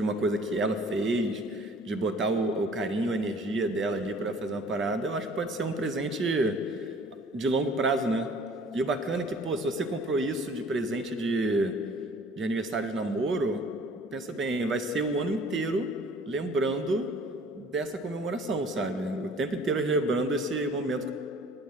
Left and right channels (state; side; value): normal; both; correlation 0.52